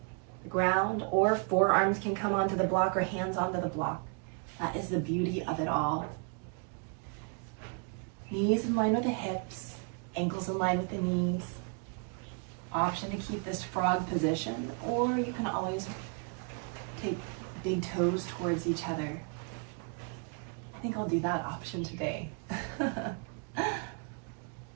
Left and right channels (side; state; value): left; quieter; 38.2 dB